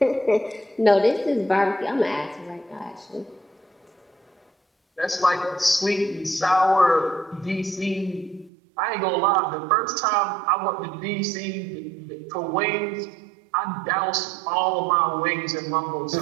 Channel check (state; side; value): drops out; left; at 8.5 s